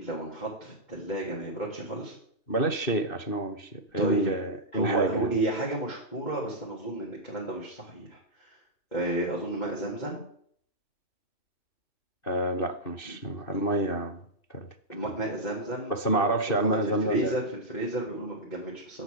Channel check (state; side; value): late; right; 2.6 ms